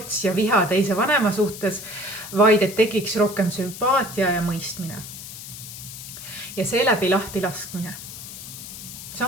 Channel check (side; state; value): left; noise; hiss, 12 dB below the sound